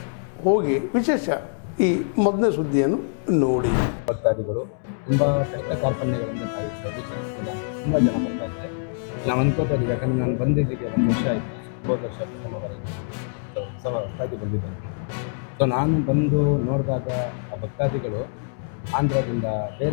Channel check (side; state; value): right; silent; 62 dB below the other